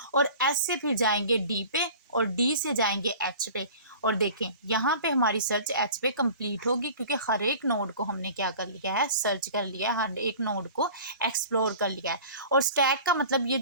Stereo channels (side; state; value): both; inverted; correlation -0.42